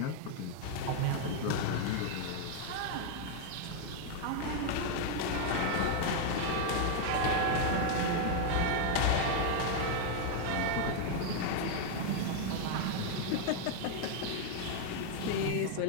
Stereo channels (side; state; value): both; different; correlation 0.00